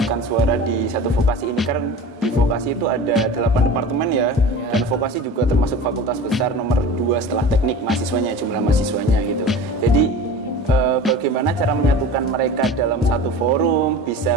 suara di satu vokasi ini. Karena di vokasi itu ada 8 departemen ya, dan vokasi juga termasuk fakultas besar nomor 2 setelah teknik mahasiswanya, jumlah mahasiswanya gitu. Jadi bagaimana cara menyatukan mereka dalam satu forum,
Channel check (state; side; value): normal; both; correlation 0.36